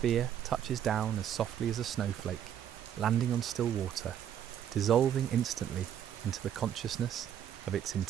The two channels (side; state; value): left; quieter; 9.8 dB